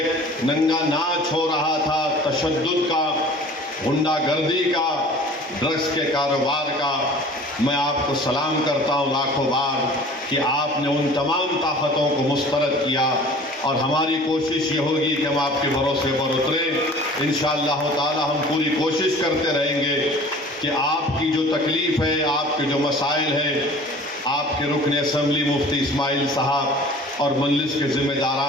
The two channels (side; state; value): both; normal; correlation 0.45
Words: नंगा नाच हो रहा था तशद्दुद का, गुंडागर्दी का, ड्रग्स के कारोबार का, मैं आपको सलाम करता हूँ लाखों बार कि आपने उन तमाम ताकतों को मुस्तरद किया और हमारी कोशिश ये होगी कि हम आपके भरोसे पर उतरें। इंशाअल्लाह ताला हम पूरी कोशिश करते रहेंगे कि आपकी जो तकलीफ़ है, आपके जो मसाइल हैं, आपके रुकन असम्बली मुफ्ती इस्माइल साहब और मजलिस के